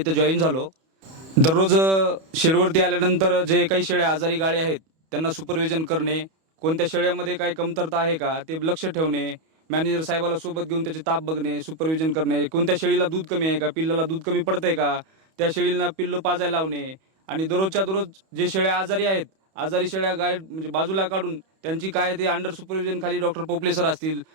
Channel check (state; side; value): late; left; 31 ms